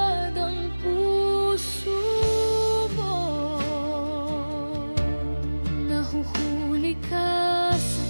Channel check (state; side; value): inverted; both; correlation -1.00